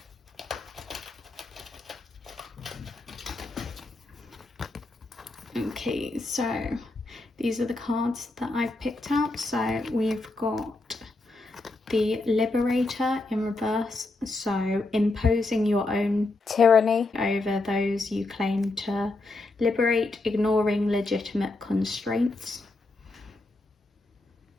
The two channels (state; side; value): quieter; right; 3.1 dB